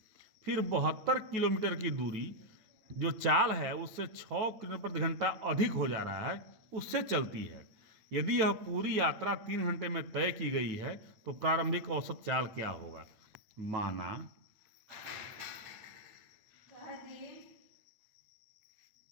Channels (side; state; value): left; late; 8.9 ms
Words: फिर 72 किलोमीटर की दूरी जो चाल है उससे 6 किलोमीटर प्रति घंटा अधिक हो जा रहा है, उससे चलती है। यदि यह पूरी यात्रा 3 घंटे में तय की गई है तो प्रारंभिक औसत चाल क्या होगा? माना